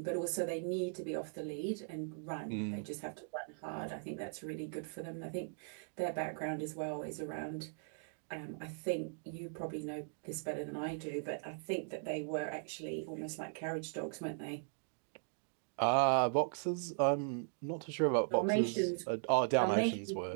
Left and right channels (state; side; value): silent; left; digital silence